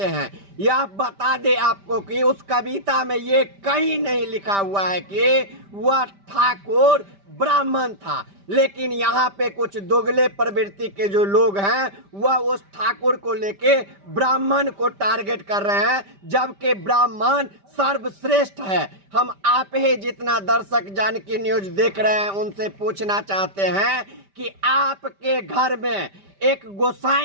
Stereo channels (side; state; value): left; late; 5.1 ms